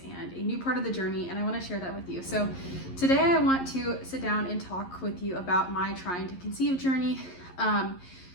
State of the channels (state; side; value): late; right; 11 ms